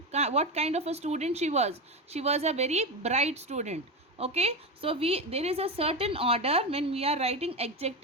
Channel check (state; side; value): normal; both; correlation 0.17